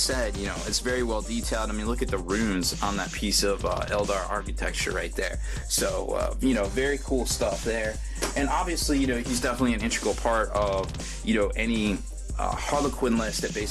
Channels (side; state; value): both; identical; correlation 1.00